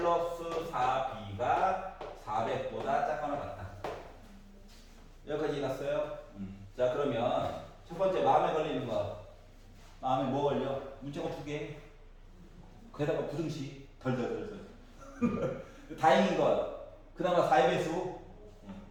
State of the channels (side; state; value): both; identical; correlation 1.00